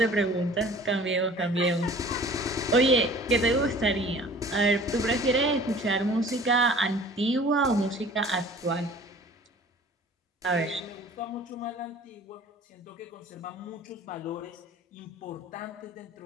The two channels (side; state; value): both; normal; correlation 0.47